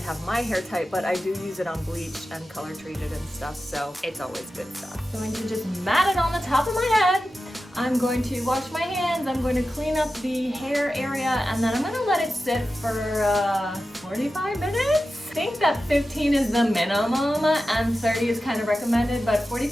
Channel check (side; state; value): both; normal; correlation 0.93